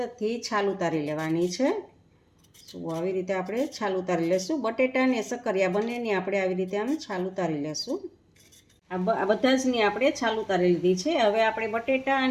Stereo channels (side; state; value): both; identical; correlation 1.00